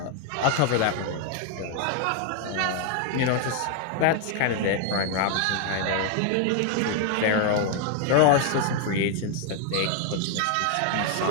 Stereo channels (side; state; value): both; different; correlation 0.00